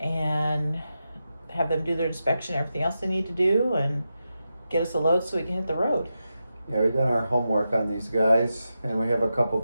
have them do their inspection, everything else they need to do, and get us a load so we can hit the road. Yeah, we've done our homework on these guys, and we have a couple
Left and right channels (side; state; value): both; inverted; correlation -0.89